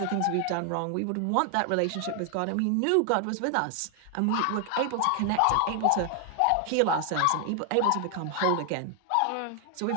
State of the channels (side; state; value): both; different; correlation 0.00